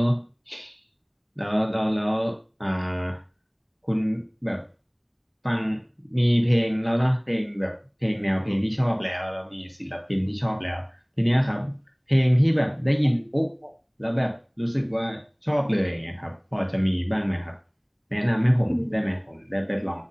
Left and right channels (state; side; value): identical; both; correlation 1.00